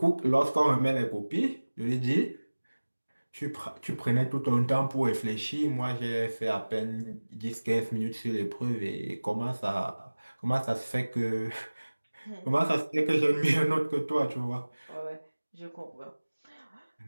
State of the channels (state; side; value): inverted; both; correlation -1.00